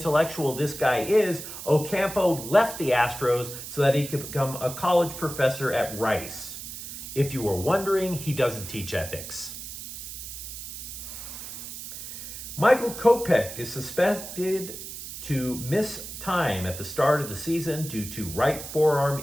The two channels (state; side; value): noise; right; hiss, 10 dB below the sound